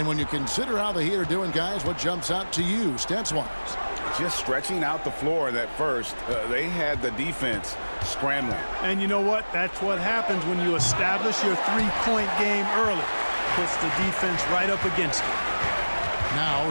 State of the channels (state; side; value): inverted; both; correlation -1.00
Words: when you consider how the Heat are doing, guys, what jumps out to you, stats-wise? Just stretching out the floor that first. They had the defense scrambling. And you know what? That's what happens when you establish your three-point game early. Puts the defense right up against it. Now